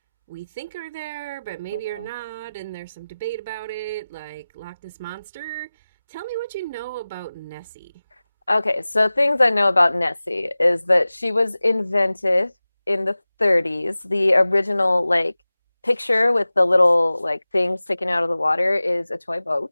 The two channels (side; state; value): both; inverted; correlation -0.97